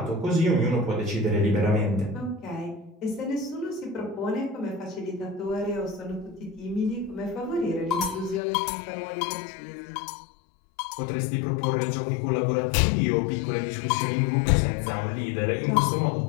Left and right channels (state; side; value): drops out; right; at 8.4 s